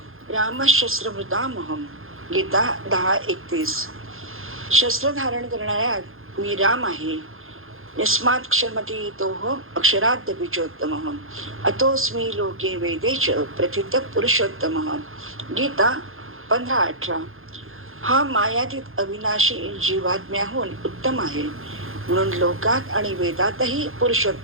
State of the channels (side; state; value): left; late; 0.60 ms